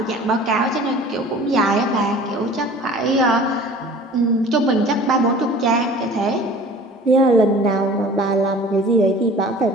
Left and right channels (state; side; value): normal; both; correlation 0.45